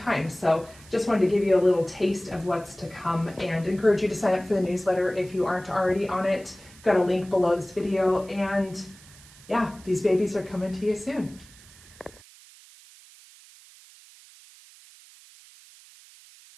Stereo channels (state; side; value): noise; right; hiss, 23 dB below the sound